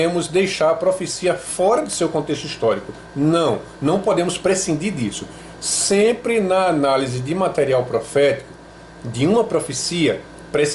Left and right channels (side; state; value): both; identical; correlation 1.00